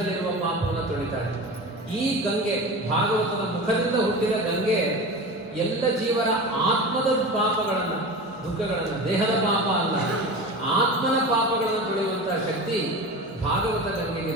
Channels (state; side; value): normal; both; correlation 0.30